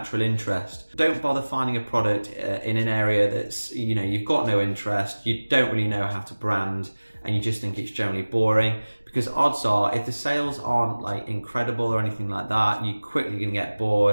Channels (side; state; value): both; inverted; correlation -1.00